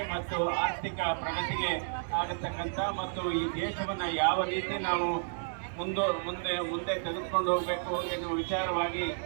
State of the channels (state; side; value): silent; left; digital silence